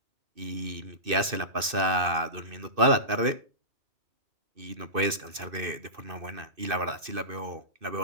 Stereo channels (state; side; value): late; left; 2.6 ms